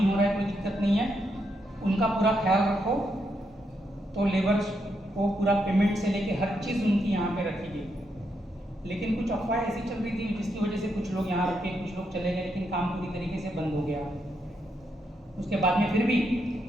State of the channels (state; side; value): normal; both; correlation 0.80